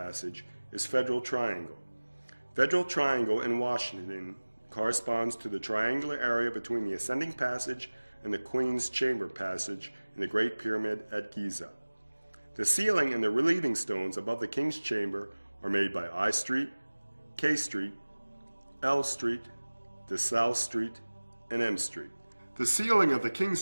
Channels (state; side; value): inverted; both; correlation -1.00